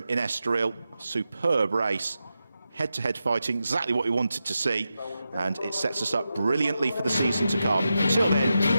in Estoril. Superb race, head-to-head fighting, exactly what we wanted to see, and it sets us up brilliantly for the season to come. Until then,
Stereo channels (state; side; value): inverted; both; correlation -0.89